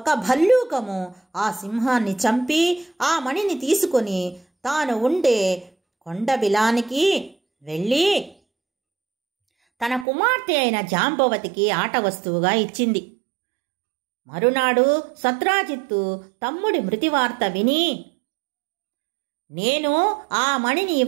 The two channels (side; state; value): left; drops out; at 10.1 s